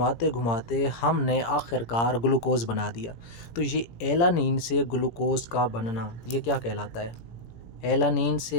घुमाते हमने आखिरकार ग्लूकोज बना दिया। तो ये एलानिन से ग्लूकोज का बनना ये क्या कहलाता है? एलानिन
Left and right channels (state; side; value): late; right; 17 ms